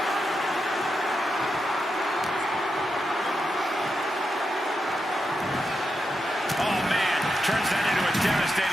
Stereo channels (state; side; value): normal; both; correlation 0.86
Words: Turns that into a